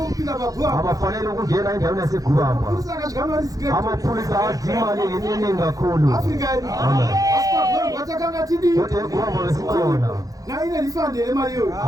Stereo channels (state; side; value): late; left; 0.17 ms